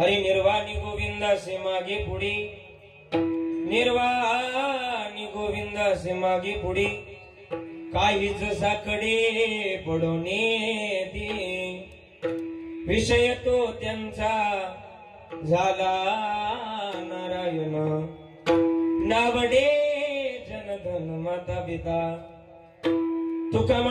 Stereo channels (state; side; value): identical; both; correlation 1.00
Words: निर्वाणी गोविंदासे मागे पुढे, निर्वाणी गोविंदासे मागे पुढे, काहीच साकडे पडोने दे, विषय तो त्यांचा झाला नारायण नावडे जनधन माता पिता तुका